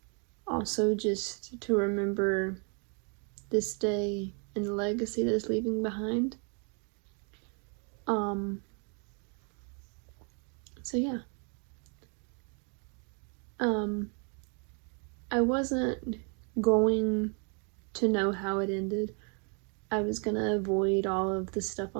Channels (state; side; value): quieter; left; 38.7 dB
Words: also just to remember this day and the legacy that it's leaving behind. So yeah. I wasn't going to know how it ended. I was gonna avoid all of the stuff